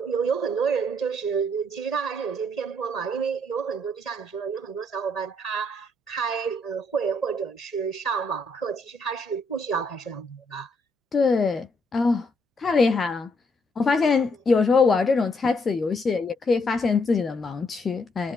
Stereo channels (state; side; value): normal; both; correlation 0.72